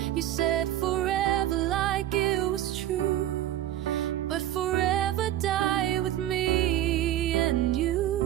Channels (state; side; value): quieter; left; 12.7 dB